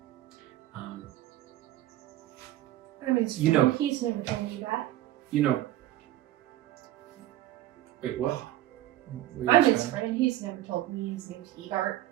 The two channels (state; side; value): quieter; left; 14.4 dB